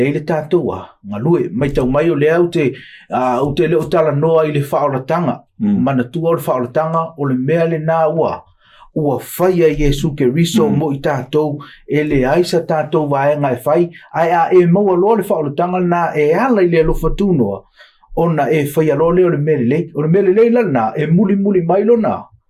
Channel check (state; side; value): identical; both; correlation 1.00